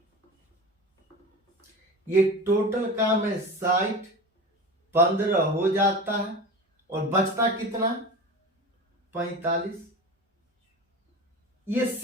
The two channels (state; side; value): normal; both; correlation 0.31